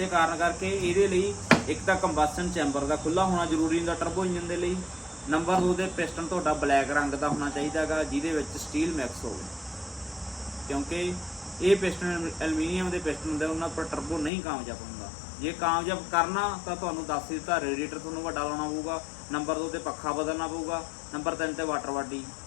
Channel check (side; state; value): right; drops out; at 14.3 s